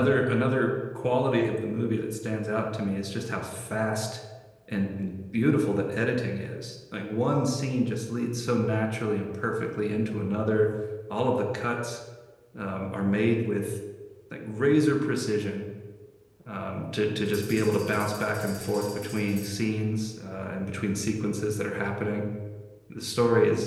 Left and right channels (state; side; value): identical; both; correlation 1.00